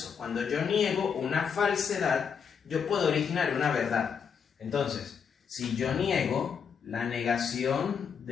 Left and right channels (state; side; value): quieter; right; 6.8 dB